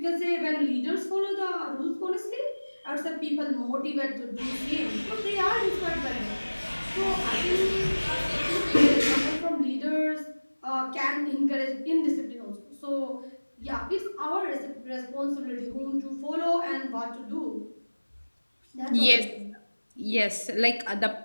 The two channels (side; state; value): both; inverted; correlation -1.00